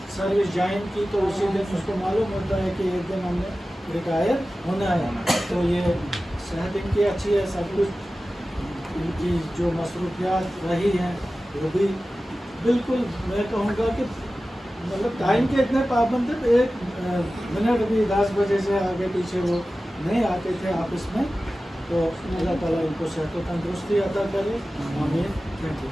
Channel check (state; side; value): normal; both; correlation 0.95